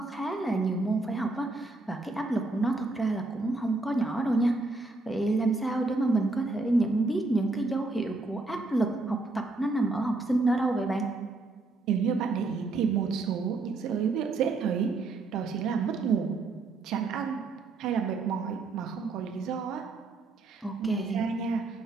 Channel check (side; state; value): left; quieter; 3.3 dB